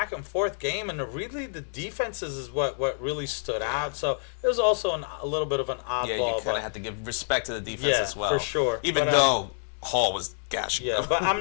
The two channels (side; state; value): right; silent; 58 dB below the other